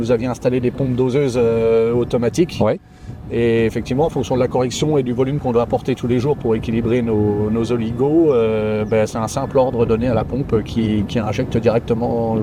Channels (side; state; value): both; identical; correlation 1.00